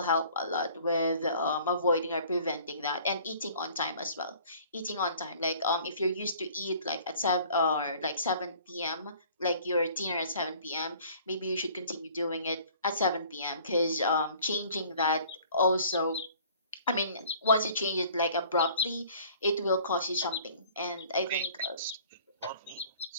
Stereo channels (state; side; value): inverted; both; correlation -0.52